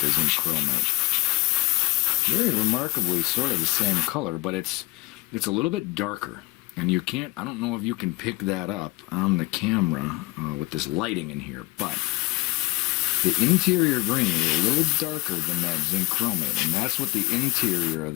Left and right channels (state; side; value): quieter; right; 21.8 dB